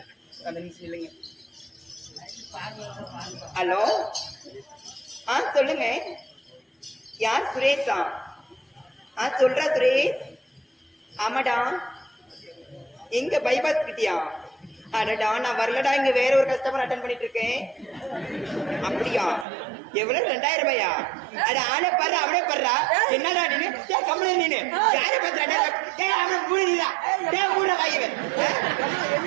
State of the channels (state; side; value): drops out; left; at 19.5 s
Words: அந்த நிமிஷம் இல்லைங்க ஹலோ சொல்லுங்க யார் சுரேஷா சொல்றா சுரேஷ் ஆமாடா எங்க பைபாஸ் கிட்டியா அடடா நான் வரலடா இங்க வேற ஒரு கஸ்டமர் அட்டன் பண்ணிட்டு இருக்கேன் அப்படியா எவ்வளவு 2000 ரூபாயா அட ஆளே பாரு அவனே பாருடா என்னடா நீனு கம்பெனி நீனு யாரை பத்திரா அவனை மூடிடா மூட வாய்வன்